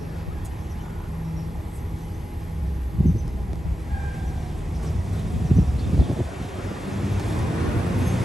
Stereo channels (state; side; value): normal; both; correlation 0.90